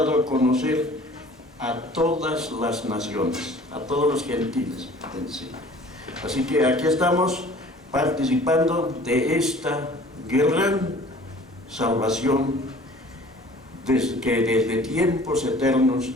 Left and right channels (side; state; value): both; normal; correlation 0.49